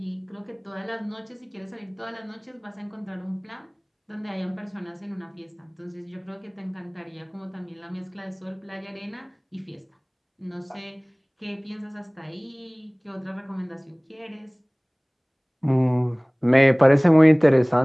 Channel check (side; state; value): both; identical; correlation 1.00